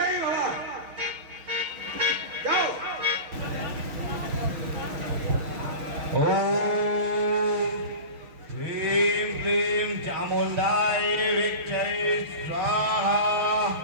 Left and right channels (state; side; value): late; left; 6.6 ms